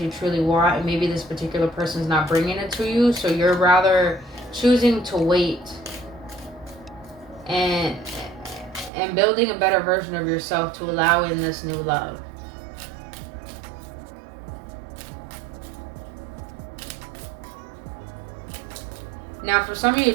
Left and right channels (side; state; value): left; drops out; at 8.9 s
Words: you truly want, and maybe this particular person's not bringing it to you, so you're rather choosing to wait and building a better version of yourself to allow in this new love. Now, for some of you